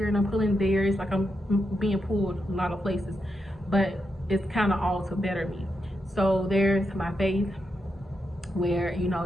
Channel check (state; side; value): normal; both; correlation 0.85